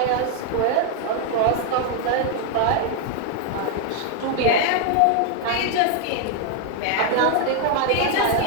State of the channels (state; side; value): different; both; correlation 0.00